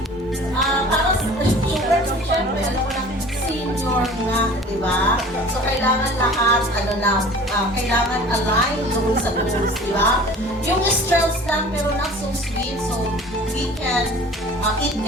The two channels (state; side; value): normal; both; correlation 0.44